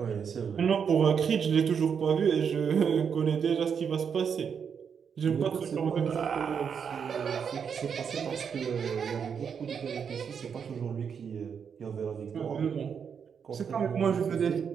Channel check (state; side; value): quieter; left; 6.9 dB